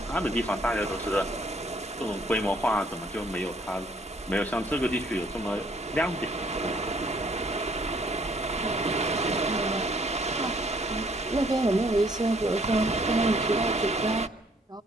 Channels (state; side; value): normal; both; correlation 0.63